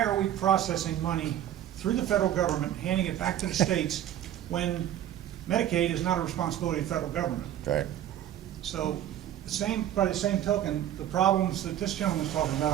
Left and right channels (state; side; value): quieter; left; 11.6 dB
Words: are we processing money through the federal government, handing it back to the states, when Medicaid is not a responsibility of the federal government? Right. So, by the same token, the problems that this gentleman is talking